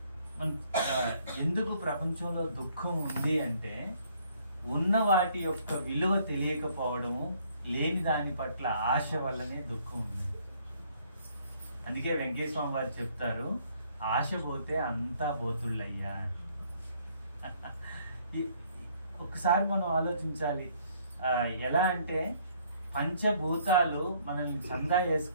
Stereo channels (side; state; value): both; inverted; correlation -0.63